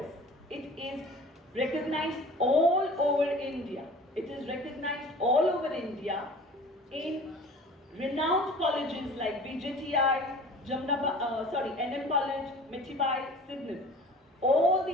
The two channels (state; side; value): normal; both; correlation 0.44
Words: It is recognized all over India. It is recognized all over India in renowned colleges like VJTI, NM College, Michibai, Sydney. All